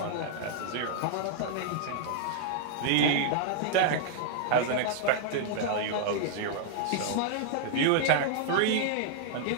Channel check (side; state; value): both; different; correlation -0.01